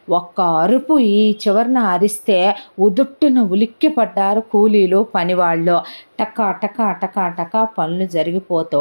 ఒక్క అరుపు ఈ చివరిన అరిస్తే ఉదుట్టున ఉలిక్కి పడ్డారు కూలీలు పనివాళ్ళు. టకా టకా టకా టకా పనులు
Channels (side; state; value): both; inverted; correlation -1.00